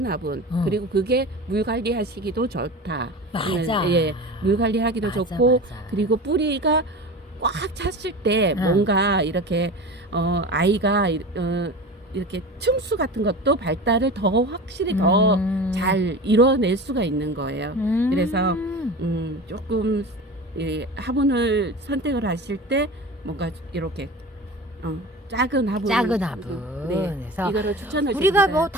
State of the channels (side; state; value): both; normal; correlation 0.32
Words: 화분 그리고 그게 물 관리하시기도 좋다. 맞아. 예, 물 관리하기도 맞아, 좋고 맞아. 그리고 뿌리가 꽉 찼을 때 뭔가 이렇게 아이가 이렇게 층수 같은 것도 발달을 더 확실히 더 잘 이뤄낼 수가 있는 거예요. 그래서 조금 화분을 선택을 하실 때 뭔가 이렇게 작은 화분. 네. 그래서 이거를 추천을 우리가 드립니다. 뭐